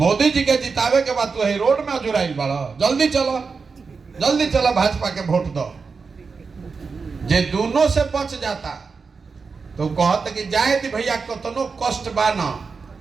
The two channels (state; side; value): quieter; left; 4.9 dB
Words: जी के जितावे के बाद तो रोड में जुड़ाई बड़ा, जल्दी चलो, जल्दी चलो भाजपा के वोट दो। जे दोनों से बच जाता तो कहते कि जाए दी भैया, कतनो कष्ट बा न,